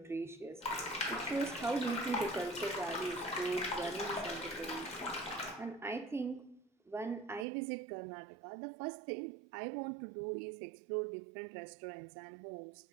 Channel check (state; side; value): drops out; left; at 7.5 s